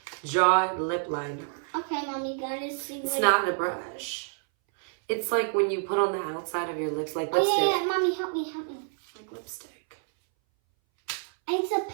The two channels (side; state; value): left; silent; 59 dB below the other